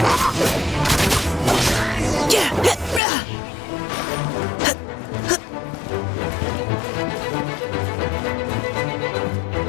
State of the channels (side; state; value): right; drops out; at 3.0 s